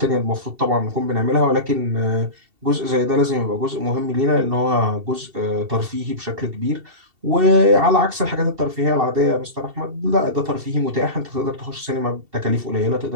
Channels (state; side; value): late; left; 2.7 ms